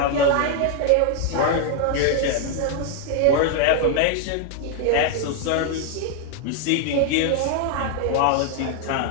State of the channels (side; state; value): both; different; correlation 0.00